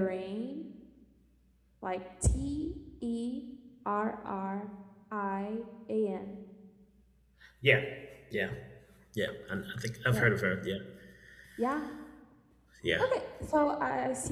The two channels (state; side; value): identical; both; correlation 1.00